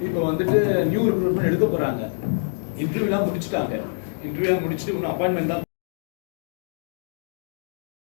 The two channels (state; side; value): silent; right; digital silence